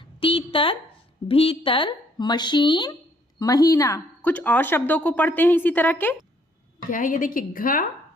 तीतर भीतर मशीन महीना। कुछ और शब्दों को पढ़ते हैं इसी तरह के। क्या है ये देखिए, घ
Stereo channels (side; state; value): both; normal; correlation 0.66